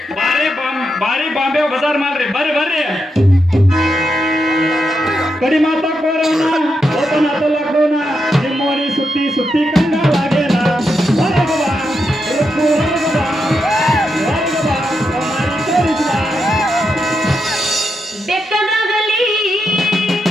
ಬಾರಿ ಬಾಂಬೆ ಬಜಾರ್ ಮಾಡ್ರಿ. ಬರ್ರಿ ಕಡಿ ಮಾತಾಕೋರವನ ಓಪನ್ ಆತ ಲಾಕ್ಡೌನ. ನಿಮ್ಮೋನಿ ಸುತ್ತಿ ಸುತ್ತಿ ಕಂಗಾಲಾಗೇನ.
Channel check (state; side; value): normal; both; correlation 0.84